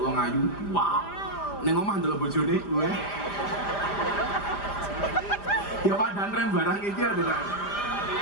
wong ayu, wow. Ning omah ndelok bojone, weh. Ya padahal rem barang iki ada.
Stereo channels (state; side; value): late; right; 5.0 ms